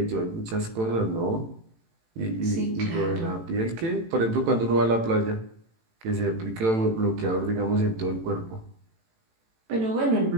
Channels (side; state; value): left; late; 18 ms